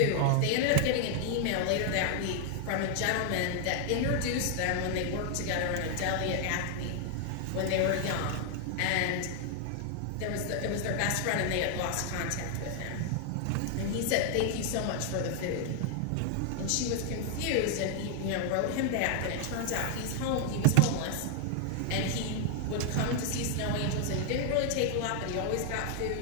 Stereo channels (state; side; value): different; both; correlation 0.00